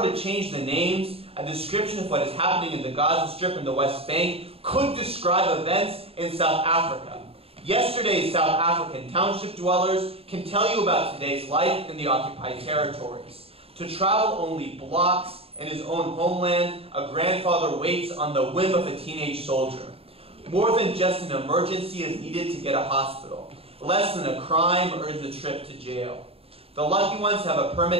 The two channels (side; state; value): left; late; 0.28 ms